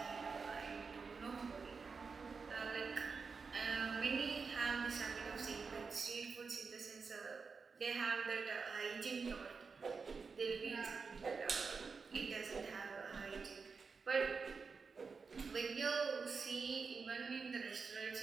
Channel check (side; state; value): left; quieter; 5.0 dB